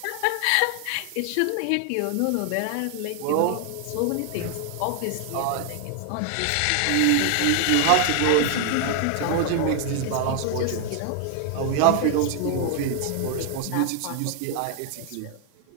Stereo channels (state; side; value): different; both; correlation 0.00